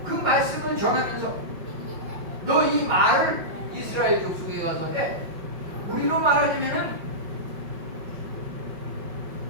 그 말씀을 전하면서 너 이 말을 이스라엘 족속에 가서 해. 우리로 말하자면은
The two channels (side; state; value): left; late; 5.5 ms